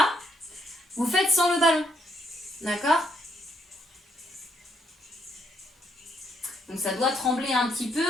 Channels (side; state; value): both; normal; correlation 0.74